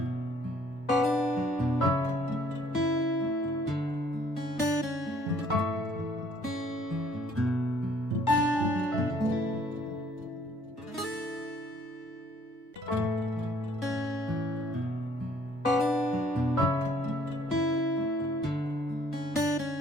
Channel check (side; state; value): both; normal; correlation 0.61